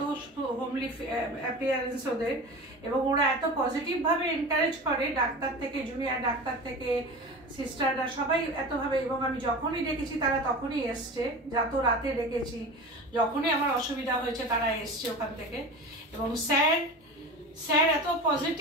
হোমলি অ্যাপিয়ারেন্স ওদের, এবং ওরা এত পজিটিভভাবে এনকারেজ করে, ডাক্তার থেকে, জুনিয়র ডাক্তার থেকে সিস্টাররা সবাই এতভাবে। এবং আমি যখনই ডেকেছি তারা তখনই এসছে, যত রাতে ডেকেছি, যখনই আমার অসুবিধা হয়েছে তারা এসছে ওখান থেকে। এবং স্যার এত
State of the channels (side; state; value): both; normal; correlation 0.32